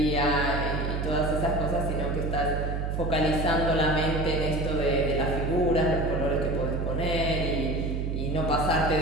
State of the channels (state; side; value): noise; right; hum, 1 dB below the sound